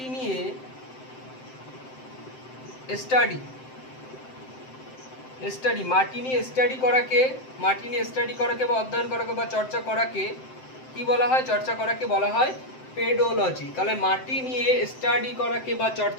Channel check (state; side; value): late; right; 7.7 ms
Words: নিয়ে স্টাডি করাকে বা অধ্যয়ন করাকে বা চর্চা করাকে কি বলা হয়? বলা হয় পেডোলজি। তাহলে মাটি নিয়ে স্টাডি করাকে বা